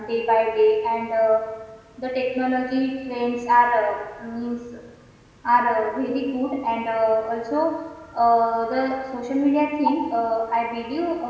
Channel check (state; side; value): identical; both; correlation 1.00